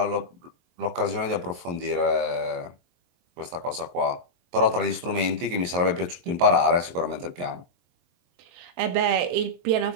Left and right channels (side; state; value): left; late; 23 ms